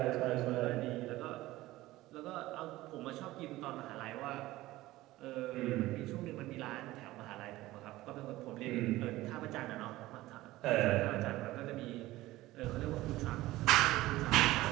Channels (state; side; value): quieter; left; 17.3 dB